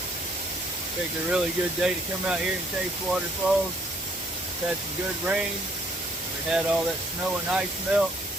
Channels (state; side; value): normal; both; correlation 0.65